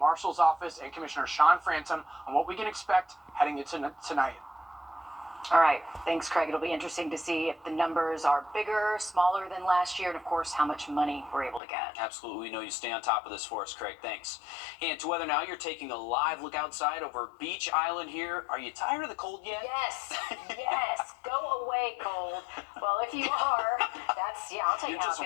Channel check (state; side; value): drops out; right; at 11.6 s